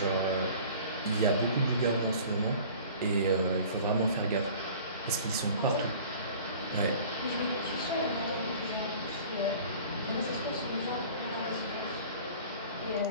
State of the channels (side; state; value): both; inverted; correlation -0.45